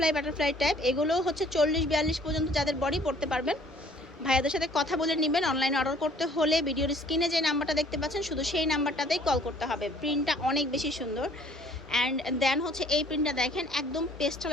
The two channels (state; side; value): normal; both; correlation 0.57